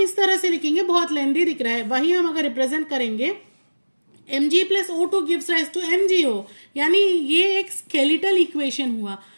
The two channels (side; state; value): both; inverted; correlation -1.00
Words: तरह से लिखेंगे बहुत लेंदी दिख रहा है, वही हम अगर रिप्रेजेंट करेंगे Mg plus O2 gives rise to MgO, यानी ये एक स्केलेटल इक्वेशन हुआ।